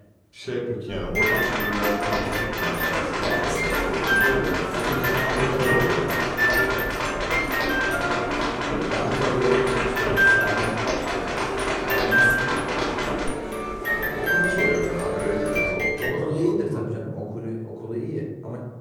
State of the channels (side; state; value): both; identical; correlation 1.00